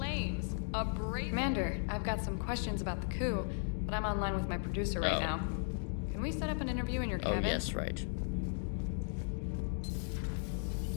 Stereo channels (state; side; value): silent; right; digital silence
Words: A brazen... Commander, I've got some questions about the coup, but I'm online with my producer right now. Can we set up an interview in your cabin? Oh, yes, right.